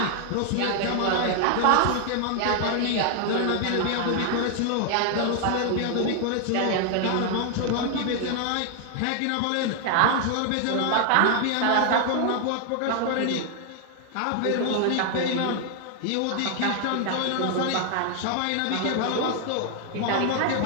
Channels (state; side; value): different; both; correlation 0.00